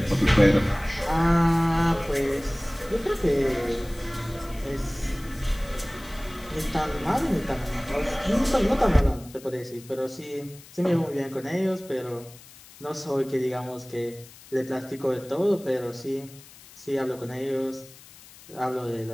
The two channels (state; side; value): noise; left; hiss, 21 dB below the sound